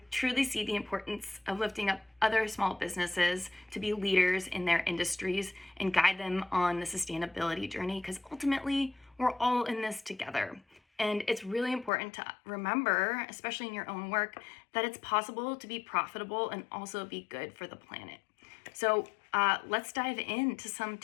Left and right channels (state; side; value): drops out; right; at 11.9 s